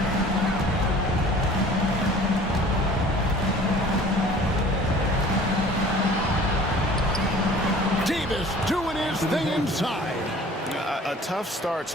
Davis doing his thing inside. A tough start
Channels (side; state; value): both; normal; correlation 0.47